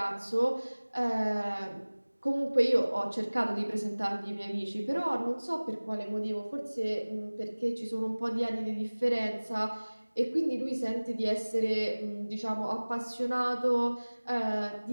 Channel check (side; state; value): both; inverted; correlation -1.00